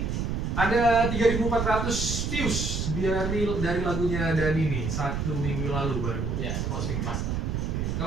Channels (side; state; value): right; noise; rumble, 1 dB below the sound